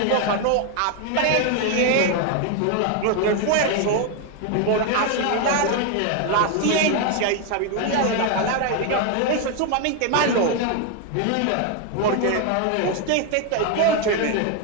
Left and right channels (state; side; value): different; both; correlation 0.01